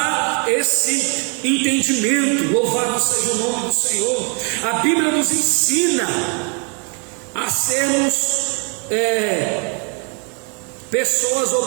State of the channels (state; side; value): quieter; left; 35.8 dB